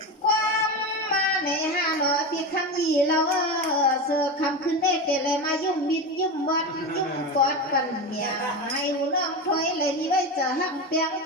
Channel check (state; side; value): normal; both; correlation 0.21